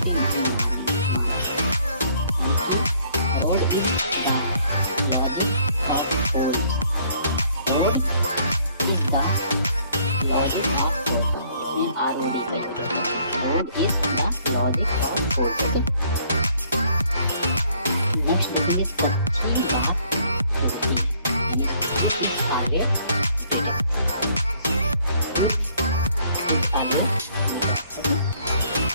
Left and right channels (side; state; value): both; inverted; correlation -0.63